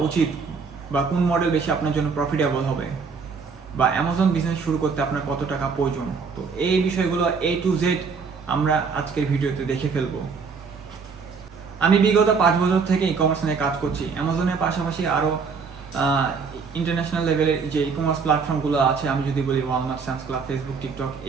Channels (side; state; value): left; quieter; 5.3 dB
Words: উচিত, বা কোন মডেল বেশি আপনার জন্য প্রফিটেবল হবে, বা অ্যামাজন বিজনেস শুরু করতে আপনার কত টাকা প্রয়োজন। তো এই বিষয়গুলো A to Z আমরা আজকের ভিডিওতে দেখে ফেলবো। আমি বিগত 5 বছর থেকে ই কমার্স নিয়ে কাজ করছি। অ্যামাজনের পাশাপাশি আরও ইন্টারন্যাশনাল লেভেলের যে ই কমার্স প্ল্যাটফর্মগুলো আছে, আমি যদি বলি Walmart, Sam's club, Facebook, TikTok,